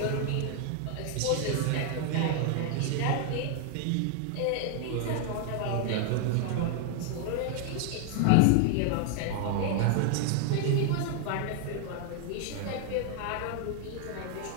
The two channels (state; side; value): different; both; correlation 0.00